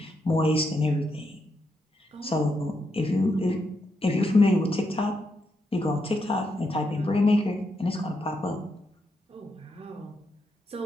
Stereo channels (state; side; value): normal; both; correlation 0.82